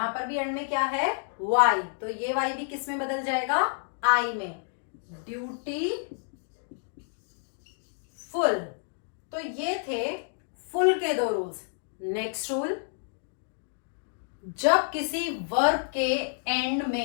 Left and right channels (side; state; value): right; silent; 58 dB below the other